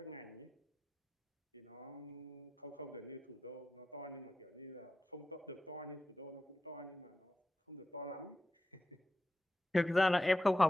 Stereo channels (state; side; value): normal; both; correlation 0.90